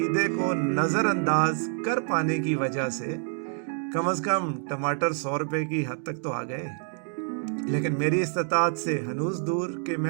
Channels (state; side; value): silent; left; 55 dB below the other